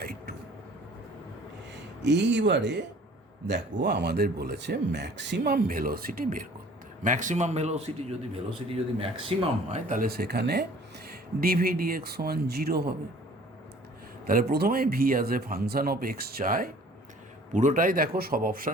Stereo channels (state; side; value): normal; both; correlation 0.51